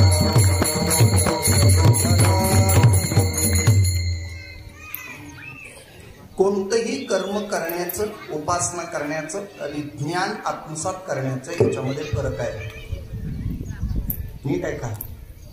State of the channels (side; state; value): both; identical; correlation 1.00